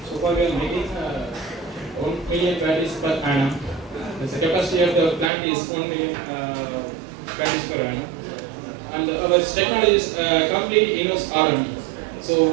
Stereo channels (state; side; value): drops out; left; at 5.3 s